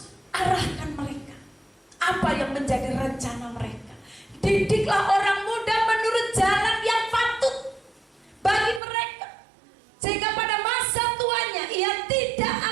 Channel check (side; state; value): left; drops out; at 8.8 s